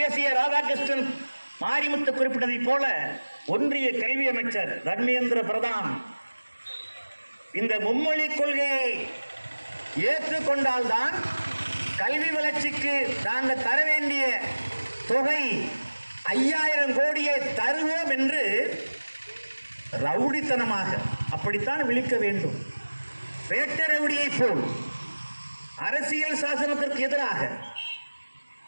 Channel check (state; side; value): inverted; both; correlation -1.00